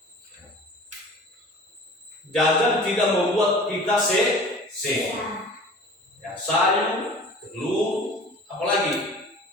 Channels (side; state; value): both; normal; correlation 0.43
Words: Jajan tidak membuat kita sehat. Ya, sayur, telur, apalagi